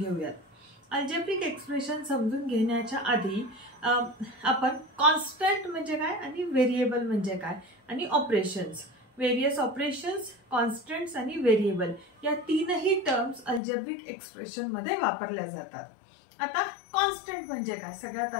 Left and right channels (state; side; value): drops out; right; at 13.6 s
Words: अल्जेब्रिक एक्सप्रेशन समजून घेण्याच्या आधी आपण कॉन्स्टंट म्हणजे काय आणि व्हेरिएबल म्हणजे काय आणि ऑपरेशन्स, व्हेरियस ऑपरेशन्स, कॉन्स्टंट्स आणि व्हेरिएबल या तीनही टर्म्स अल्जेब्रिक एक्सप्रेशन मध्ये वापरल्या जातात. आता कॉन्स्टंट म्हणजे काय, सगळ्यात